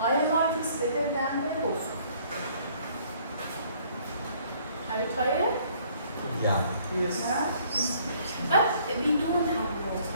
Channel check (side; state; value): both; inverted; correlation -0.61